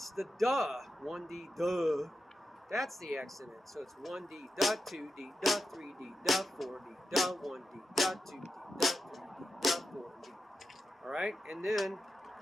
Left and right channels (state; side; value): normal; both; correlation 0.89